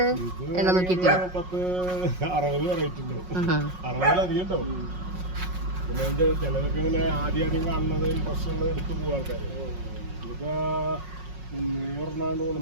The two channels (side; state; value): left; late; 5.5 ms